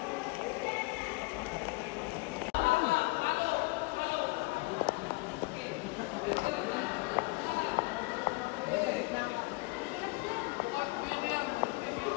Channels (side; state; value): right; quieter; 25.9 dB